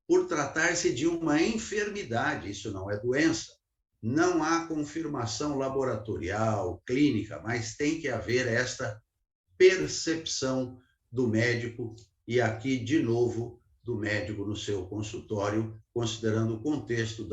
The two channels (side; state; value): both; identical; correlation 1.00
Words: Por tratar-se de uma enfermidade, isso não é doença. Não há confirmação laboratorial, clínica, mas tem que haver esta percepção do médico, e aqui, de novo, do médico no seu consultório, considerando o contexto